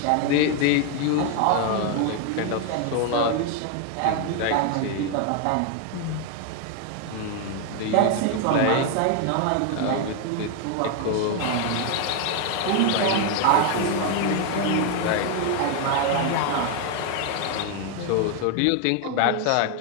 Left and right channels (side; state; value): both; different; correlation 0.01